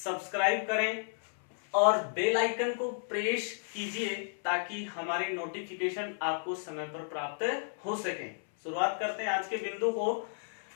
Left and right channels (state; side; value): silent; right; 56 dB below the other